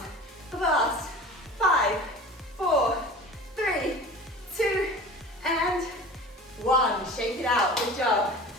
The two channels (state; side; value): normal; both; correlation 0.39